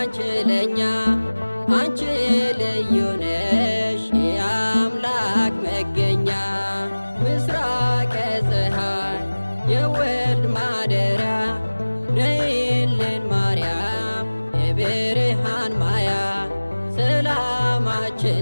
ለኛ አንቺ ልዩ ነሽ የአምላክ መገኛ። ምስራቀ ፀሐይ የወልድ ማደሪያ ነይልን ማርያም የብርሃን ማያ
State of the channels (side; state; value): both; inverted; correlation -1.00